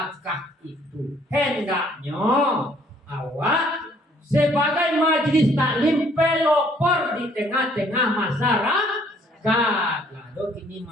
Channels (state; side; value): normal; both; correlation 0.62